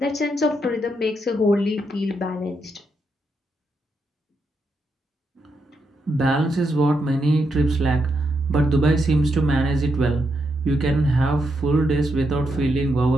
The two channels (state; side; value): normal; both; correlation 0.81